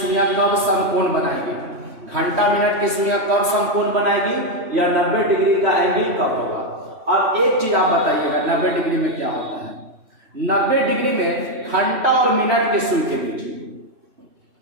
कब समकोण बनाएगी। घंटा मिनट की सुइयां कब समकोण बनाएगी या 90 डिग्री का एंगल कब होगा। अब एक चीज आप बताइएगा 90 डिग्री में क्या होता है। 90 डिग्री में घंटा और मिनट के सुई के बीच,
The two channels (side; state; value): left; late; 3.1 ms